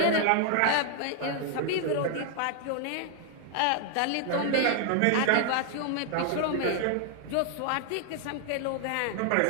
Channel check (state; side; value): different; both; correlation 0.00